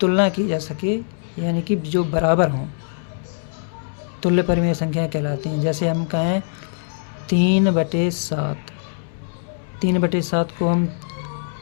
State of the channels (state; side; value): silent; right; 64 dB below the other